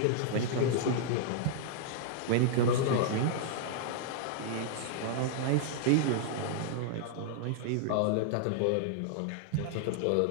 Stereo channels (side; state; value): both; different; correlation -0.01